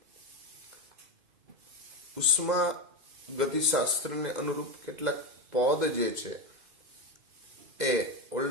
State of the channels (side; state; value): left; late; 2.0 ms